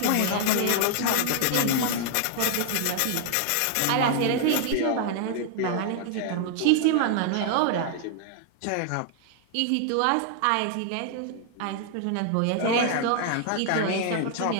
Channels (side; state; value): both; different; correlation 0.00